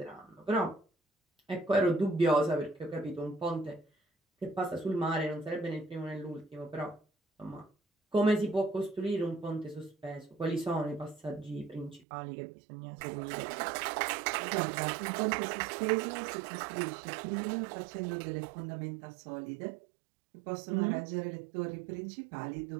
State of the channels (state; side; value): drops out; left; at 12.1 s